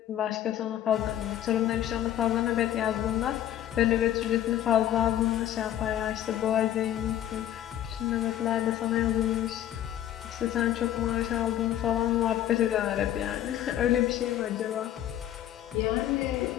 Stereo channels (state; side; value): quieter; right; 11.8 dB